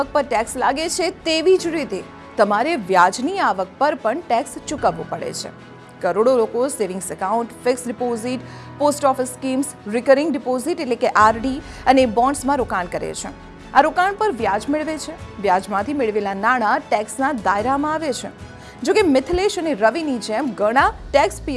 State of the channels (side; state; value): both; identical; correlation 1.00